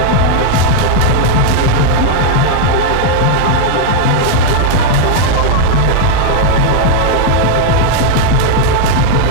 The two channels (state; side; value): different; both; correlation 0.00